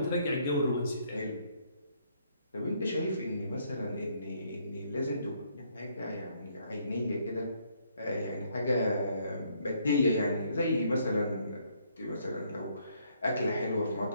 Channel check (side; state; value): both; inverted; correlation -0.69